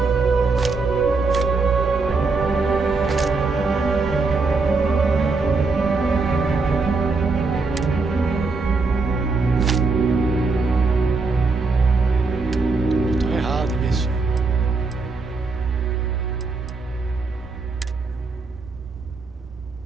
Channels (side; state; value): left; quieter; 4.0 dB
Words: Tô errado nisso.